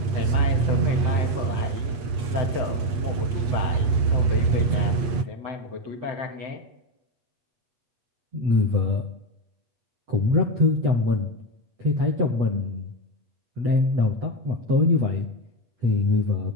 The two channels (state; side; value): late; left; 8.5 ms